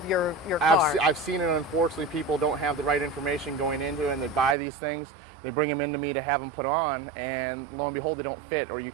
your car. I've seen it. Unfortunately, people don't have the right information going into it, and they buy these things. They bring them into me to have them put on, and lo and behold, they don't fit, or you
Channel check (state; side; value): drops out; left; at 4.5 s